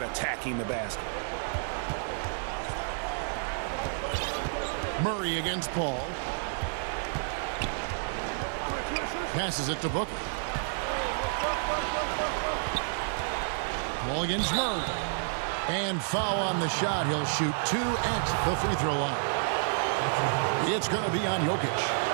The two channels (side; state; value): left; silent; digital silence